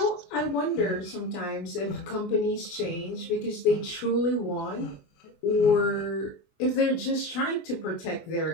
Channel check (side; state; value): right; late; 24 ms